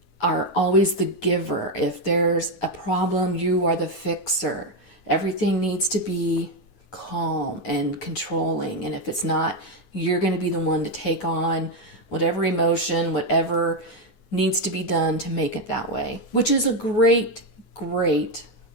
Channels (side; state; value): right; late; 9.3 ms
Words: are always the giver. If there's a problem, you are the fixer. Everything needs to be calm and controlling. And if it's not, you're going to be the one to take on whatever emotion, whatever needs to be done to make it that way, which is a great, great